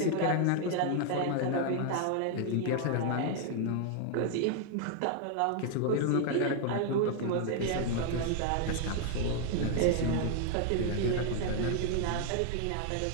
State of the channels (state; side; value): different; both; correlation 0.00